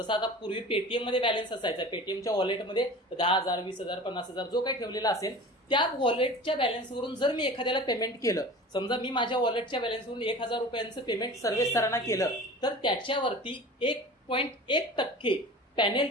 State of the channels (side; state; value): both; normal; correlation 0.38